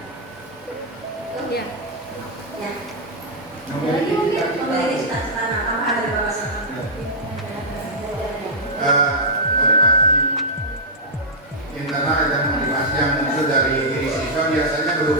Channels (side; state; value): both; normal; correlation -0.09